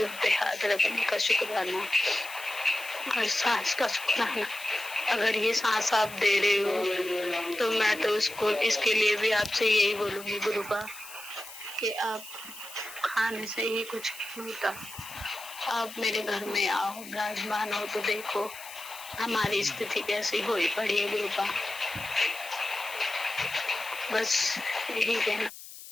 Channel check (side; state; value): left; noise; hiss, 15 dB below the sound